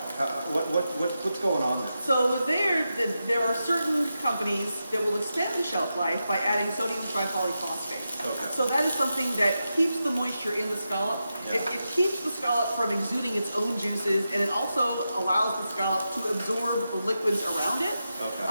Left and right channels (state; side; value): inverted; both; correlation -0.89